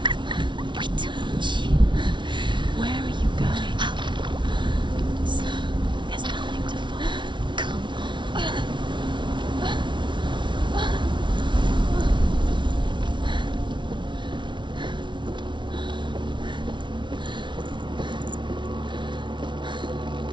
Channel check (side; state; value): left; late; 0.24 ms